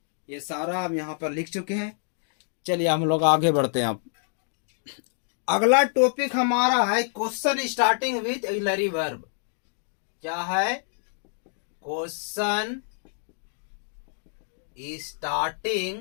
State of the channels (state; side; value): silent; right; digital silence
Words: ये सारा हम यहाँ पर लिख चुके हैं। चलिए हम लोग आगे बढ़ते हैं। अब अगला टॉपिक हमारा है question starting with auxiliary verb. क्या है? Question